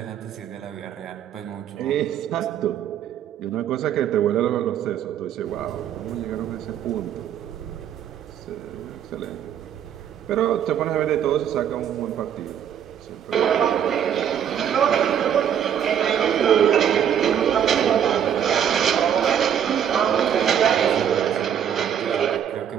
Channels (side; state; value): left; quieter; 9.1 dB